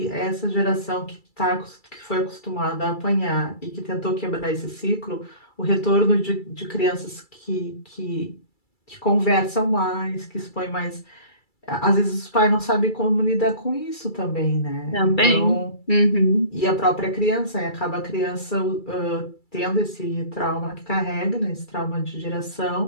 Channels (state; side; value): late; right; 2.3 ms